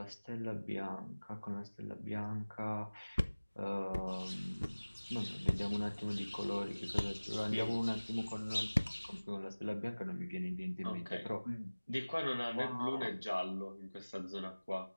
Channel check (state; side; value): inverted; both; correlation -1.00